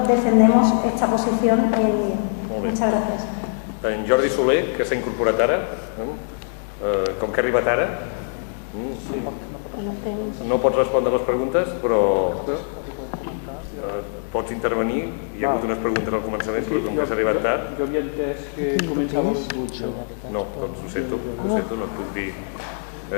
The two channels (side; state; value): right; silent; digital silence